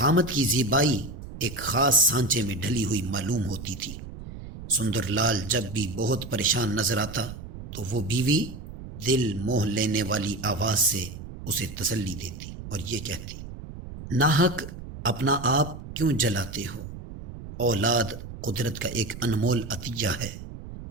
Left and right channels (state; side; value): noise; right; rumble, 12 dB below the sound